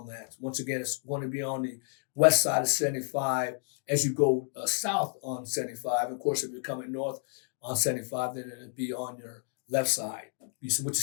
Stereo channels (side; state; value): right; silent; 57 dB below the other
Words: that. Once again, it's going to be on the west side of 75 as you go south on 75. Of course, if you're coming north on 75, then it'll be on your left side, which is